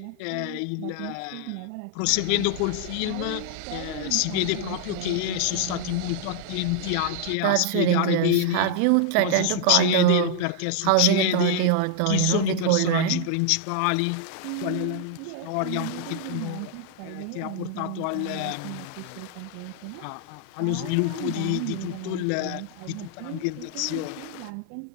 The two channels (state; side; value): different; both; correlation -0.01